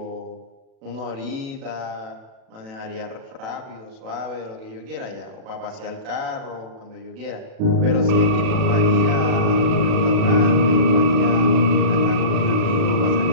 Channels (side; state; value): left; late; 36 ms